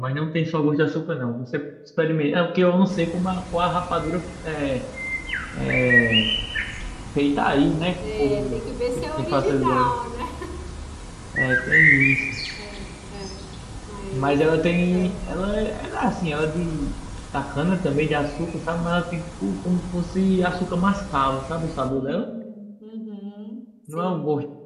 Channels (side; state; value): both; identical; correlation 1.00